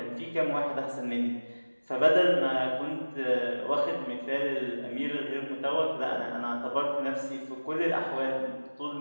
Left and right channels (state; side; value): inverted; both; correlation -1.00